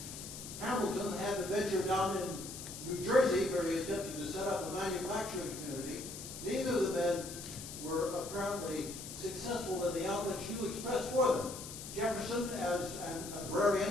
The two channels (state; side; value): noise; left; hiss, 10 dB below the sound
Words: Hamilton had the venture down in New Jersey where he attempted to set up a manufacturing community. Neither of the men were apparently successful in the outlooks you expressed for them. Jefferson as an